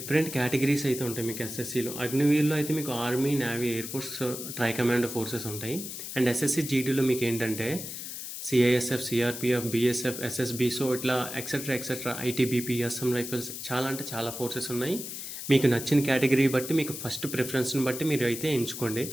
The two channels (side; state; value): left; noise; hiss, 8 dB below the sound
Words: కేటగిరీస్ అయితే ఉంటాయి మీకు ఎస్ఎస్సిలో. అగ్నివీర్లో అయితే మీకు army, navy, air force, try commando forces ఉంటాయి. అండ్ ఎస్ఎస్సిజిడిలో మీకు ఏంటంటే CISF, CRPF, BSF, SSB, so ఇట్లా ఎక్సెట్రా ఐటీబీపీ, అస్సాం రైఫిల్స్, చాలా అంటే చాలా ఫోర్సెస్ ఉన్నాయి. మీకు నచ్చిన కేటగిరీ బట్టి, మీకు ఫస్ట్ ప్రిఫరెన్స్ని బట్టి మీరు అయితే ఎంచుకోండి.